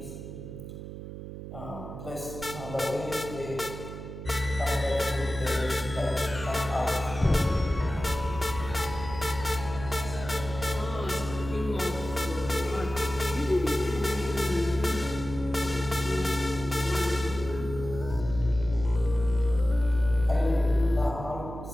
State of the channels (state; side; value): noise; right; hum, 10 dB below the sound